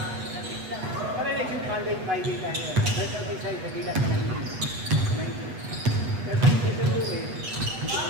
Para next week, Monday, Friday tayo. Pero sa nagilat na 19. Pero sa season mo eh.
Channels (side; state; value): left; late; 8.3 ms